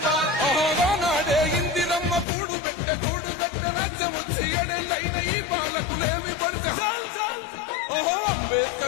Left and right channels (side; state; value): right; drops out; at 2.2 s